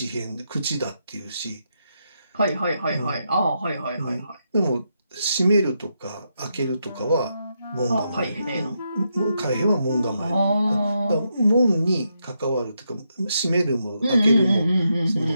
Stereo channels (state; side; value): inverted; both; correlation -0.82